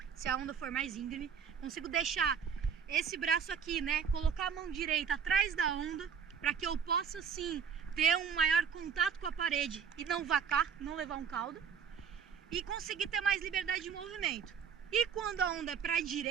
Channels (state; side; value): quieter; left; 7.0 dB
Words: se a onda for mais íngreme. Consigo deixar esse braço aqui, né, colocar a mão direita atrás da onda, para que eu possa sim ter um maior contato com a parede e não vacar, não levar um caldo, e conseguir ter mais liberdade de movimento. E quando a onda é para a